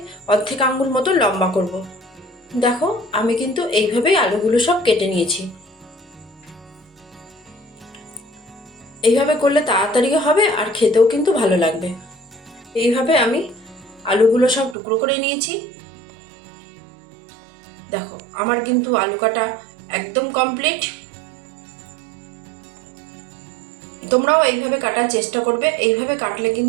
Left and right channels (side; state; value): left; drops out; at 14.8 s